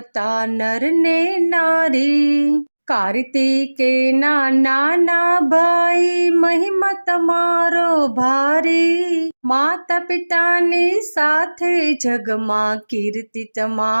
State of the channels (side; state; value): both; inverted; correlation -1.00